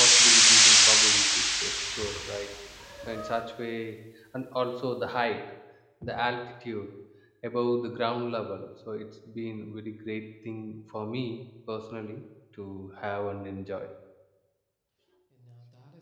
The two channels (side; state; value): both; identical; correlation 1.00